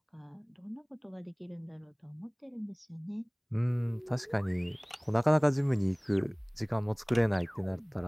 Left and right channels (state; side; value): identical; both; correlation 1.00